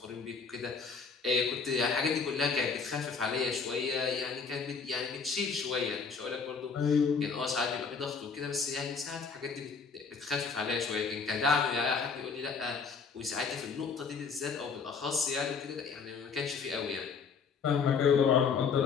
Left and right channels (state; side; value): quieter; right; 5.4 dB